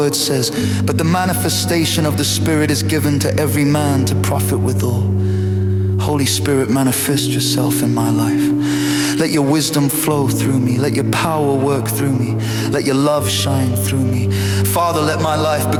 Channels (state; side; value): identical; both; correlation 1.00